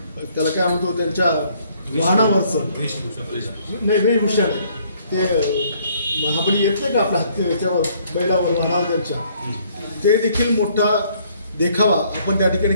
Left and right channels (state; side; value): inverted; both; correlation -0.64